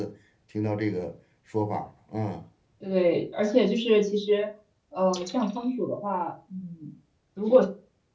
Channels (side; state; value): both; identical; correlation 1.00